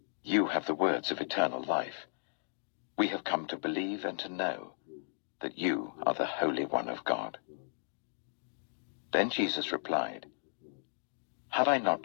You have the words of eternal life. We have come to believe and to know that you are the Holy One of God." Then Jesus replied, "Have I not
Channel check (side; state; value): right; silent; digital silence